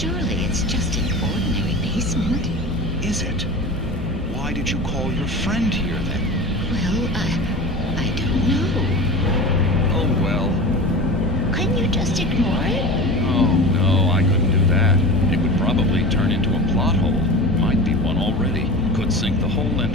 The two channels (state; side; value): normal; both; correlation 0.32